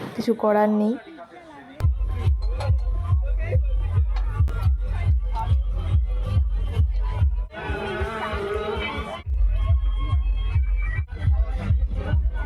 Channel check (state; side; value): identical; both; correlation 1.00